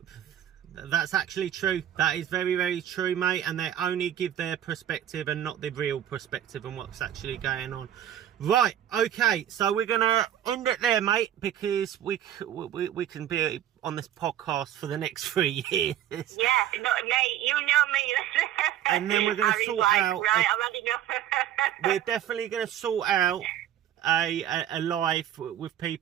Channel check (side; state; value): left; quieter; 11.1 dB